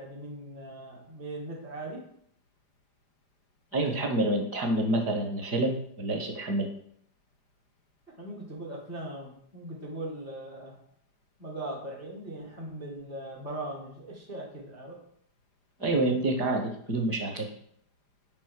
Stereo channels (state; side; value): late; right; 5.0 ms